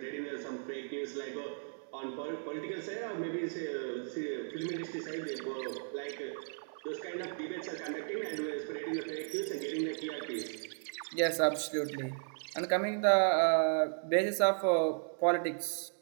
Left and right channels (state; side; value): silent; left; digital silence